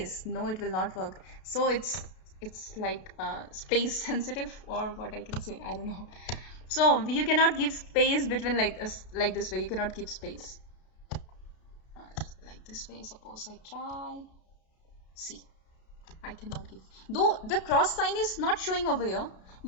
No, it will not work. So it's like space sensitive, or what I can say, I don't know. So you cannot give space between like this way. You cannot give space like this way. Suppose I try. See, I cannot give. Though the cross sign is not showing over here,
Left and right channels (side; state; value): right; late; 32 ms